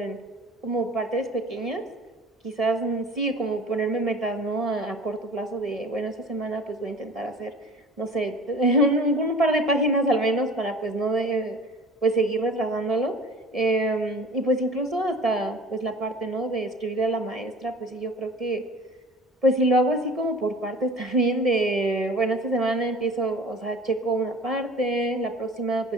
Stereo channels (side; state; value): both; normal; correlation 0.42